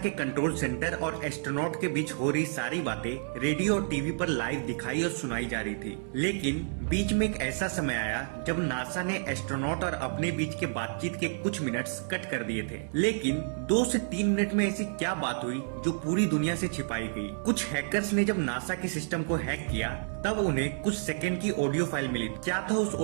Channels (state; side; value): silent; left; digital silence